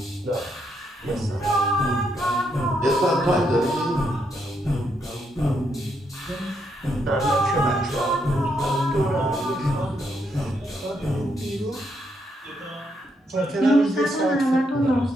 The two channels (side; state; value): both; normal; correlation 0.77